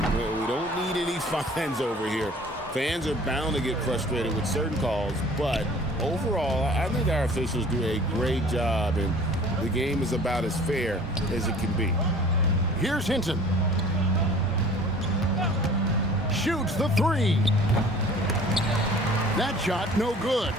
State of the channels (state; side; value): normal; both; correlation 0.48